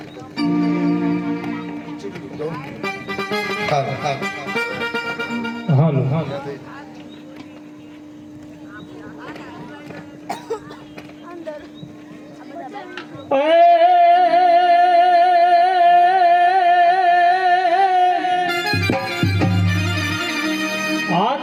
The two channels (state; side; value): identical; both; correlation 1.00